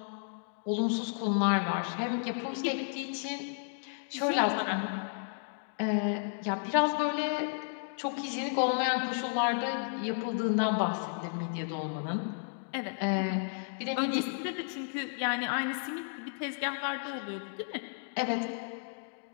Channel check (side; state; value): right; silent; digital silence